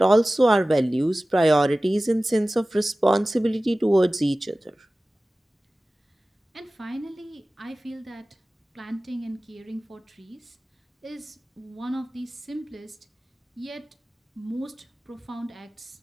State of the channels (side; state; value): both; normal; correlation 0.97